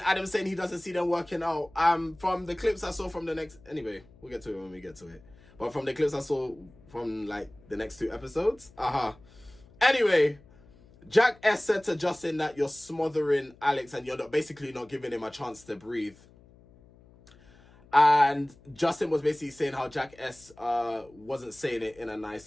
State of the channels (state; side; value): noise; left; hum, 26 dB below the sound